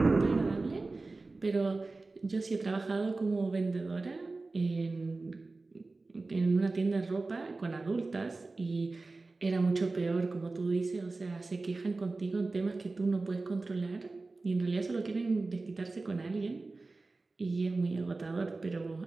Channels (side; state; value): left; quieter; 3.5 dB